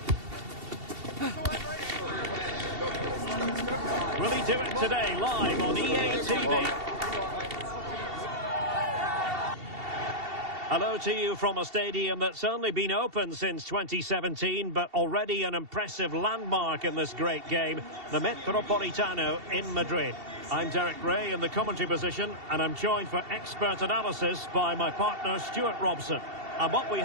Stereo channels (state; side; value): late; left; 2.7 ms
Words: Will he do it today, live on EA TV? Hello to you from a stadium that's only been open since 2017, but already an impressive landmark in this great game, the Metropolitano in Madrid. I'm Derek Ray in the commentary position, and I'm joined for expert analysis by my partner Stuart Robson. And what we